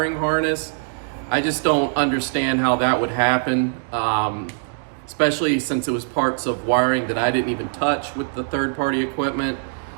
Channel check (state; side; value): silent; left; digital silence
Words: harness. I just don't understand how that would happen, especially since it was parts of wiring that I didn't even touch with the third-party equipment.